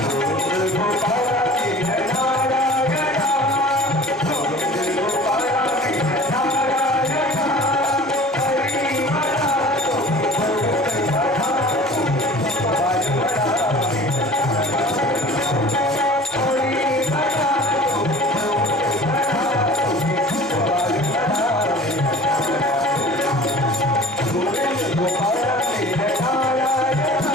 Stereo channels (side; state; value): both; normal; correlation 0.43